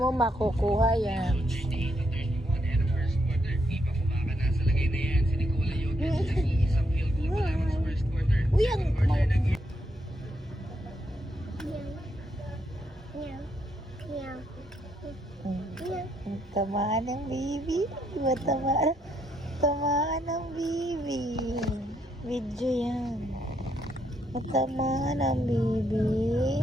makukuha yan. Uy, ang tamaan ng baby. Diba tamaan ng baby. Video yan. Tamaan ng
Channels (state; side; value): normal; both; correlation 0.77